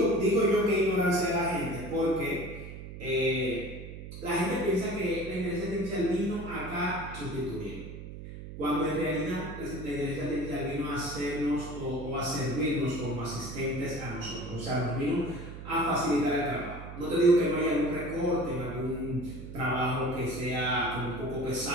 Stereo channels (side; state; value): right; noise; hum, 11 dB below the sound